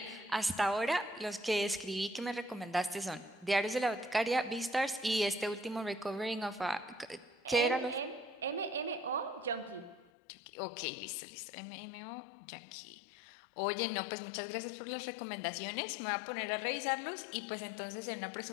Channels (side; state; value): right; drops out; at 10.1 s